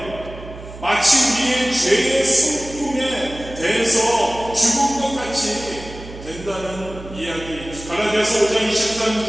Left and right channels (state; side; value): noise; right; hum, 14 dB below the sound